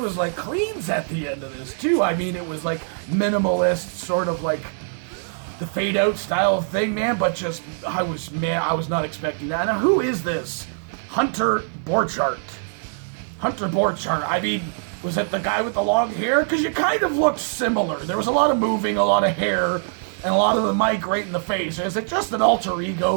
like cleans at the end of this too. I mean, it was like minimalist, sort of like the fade out style thing, man. But just, I was not expecting that. Now, who is this? Hunter Borchardt. Hunter Borchardt. I mean, was it the guy with the long hair? Because you kind of looked similar. There was a lot of moving, a lot of hair, and a lot of the mic right in the face. Is it just an alter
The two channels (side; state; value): left; silent; digital silence